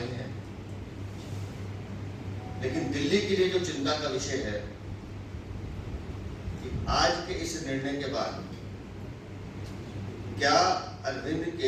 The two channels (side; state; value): both; identical; correlation 1.00